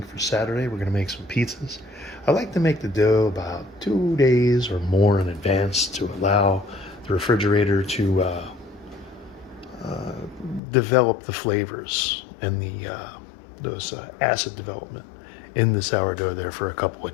for Saturday. We're going to make some pizzas. I like to make the dough about 2 days or more in advance to allow the refrigerator to develop the flavors and those acid development in the sourdough there for a couple of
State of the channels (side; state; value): right; drops out; at 10.6 s